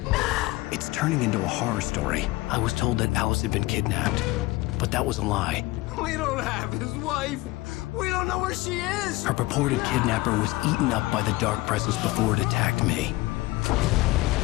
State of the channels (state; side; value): quieter; right; 20.2 dB